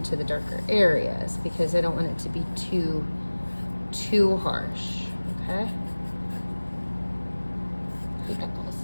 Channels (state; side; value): inverted; both; correlation -1.00